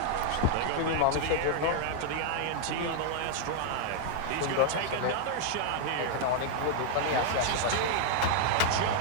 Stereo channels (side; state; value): both; different; correlation -0.01